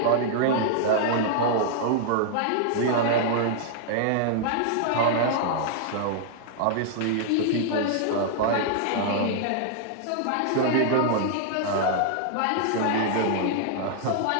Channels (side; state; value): both; different; correlation -0.01